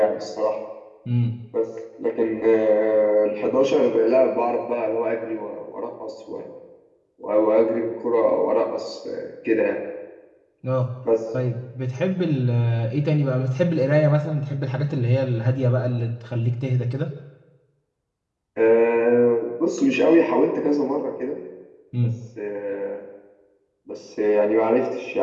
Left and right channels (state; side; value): identical; both; correlation 1.00